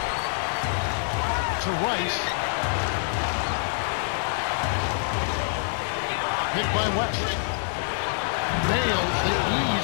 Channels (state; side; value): silent; right; digital silence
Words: To Rice. Picked by West. Nails the